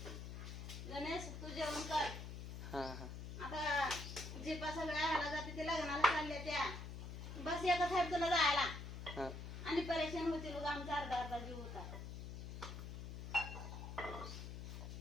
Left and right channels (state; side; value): noise; left; hum, 8 dB below the sound